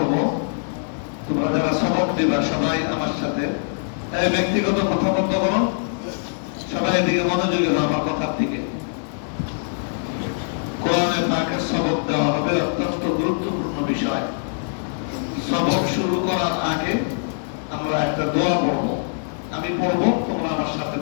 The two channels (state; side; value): silent; right; digital silence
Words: তোমরা যারা সবক দিবা সবাই আমার সাথে ব্যক্তিগত কথা বন্ধ করো, সবাই এদিকে মনোযোগী হও আমার কথার দিকে। কোরআনে পাকের সবক দেওয়া হবে, অত্যন্ত গুরুত্বপূর্ণ বিষয়। সবক শুরু করার আগে আমরা একটা দোয়া পড়ব। আমি পড়ব, তোমরা আমার সাথে